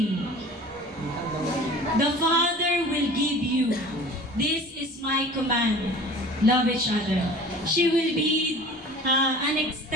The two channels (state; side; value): normal; both; correlation 0.43